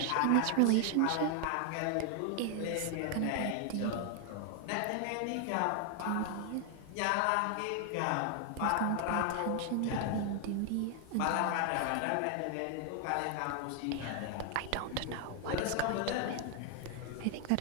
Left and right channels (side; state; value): both; different; correlation 0.00